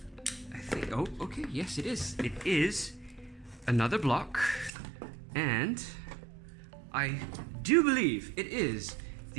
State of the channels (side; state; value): left; drops out; at 4.7 s